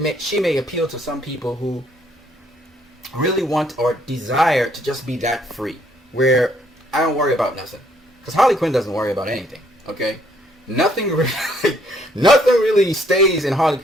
she may appeal to some people who really want or desire to just be that free, where I don't worry about nothing. Because Harley Quinn doesn't worry about anything. Okay, nothing really, nothing really stays in Harley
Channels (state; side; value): normal; both; correlation 0.67